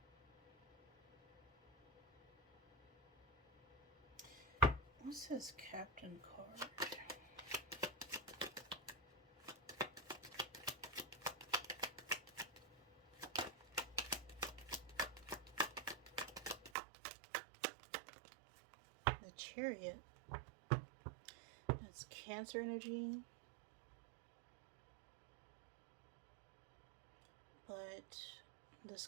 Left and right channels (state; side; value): drops out; left; at 16.7 s